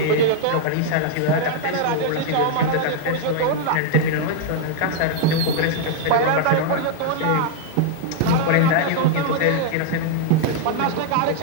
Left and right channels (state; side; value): different; both; correlation -0.01